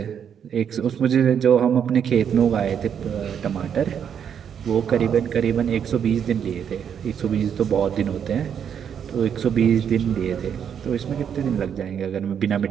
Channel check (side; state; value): left; quieter; 8.1 dB